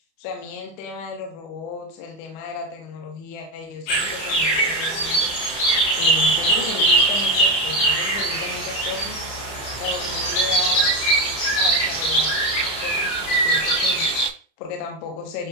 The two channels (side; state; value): right; late; 31 ms